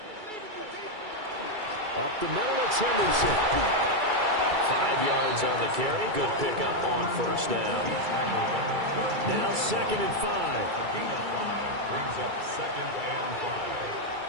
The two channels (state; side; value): late; left; 2.3 ms